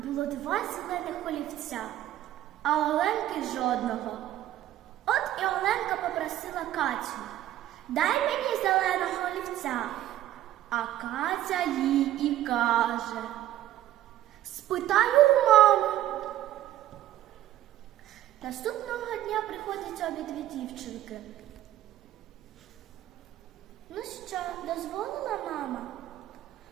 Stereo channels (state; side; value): quieter; left; 13.3 dB